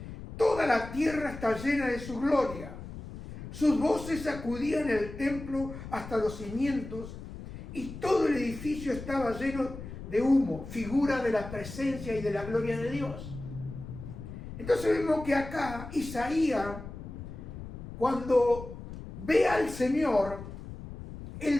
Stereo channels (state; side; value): noise; left; rumble, 11 dB below the sound